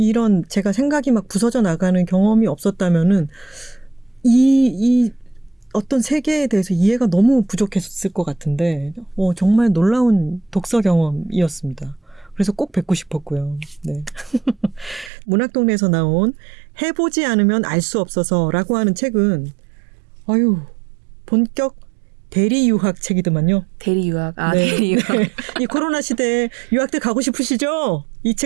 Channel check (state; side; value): drops out; left; at 15.1 s